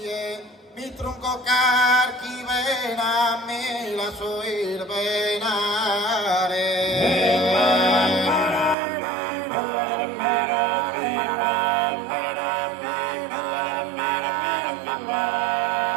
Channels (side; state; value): left; drops out; at 8.8 s